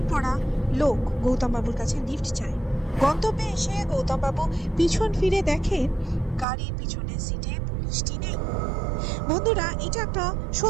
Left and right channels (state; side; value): drops out; left; at 6.5 s